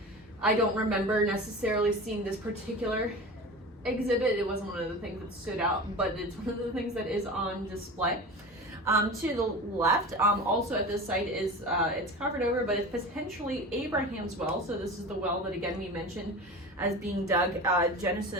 I don't remember necessarily seeing this particular exhibit. It wasn't one of the things that stood out, but it's one of the things that is on display. To the left, also at this site is, it's covered over, but it's potentially Abraham's well. So this is the well that again we mentioned as being dug,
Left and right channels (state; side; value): normal; both; correlation 0.32